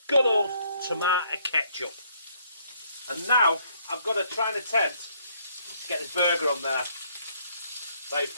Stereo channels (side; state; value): both; inverted; correlation -0.67